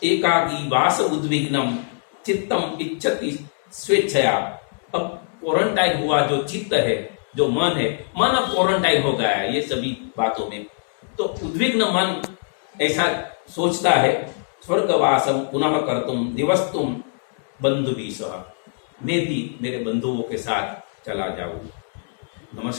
एकाकी वास उद्विग्नम चित्तम इच्छति स्वेच्छया। अब क्वारंटाइन हुआ जो चित्त है, जो मन है, मन अब क्वारंटाइन हो गया है ये सभी बातों में, तो उद्विग्न मन ऐसा सोचता है स्वर्गवासम पुनः कर्तुम दिवस्तुम बंधुभिः सह। मैं भी मेरे बंधुओं के साथ चला जाऊं।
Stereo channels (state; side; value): silent; right; 64 dB below the other